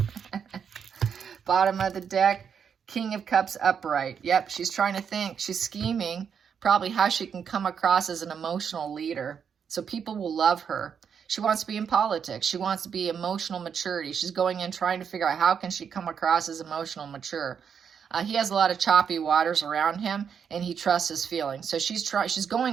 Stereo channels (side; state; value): left; quieter; 7.2 dB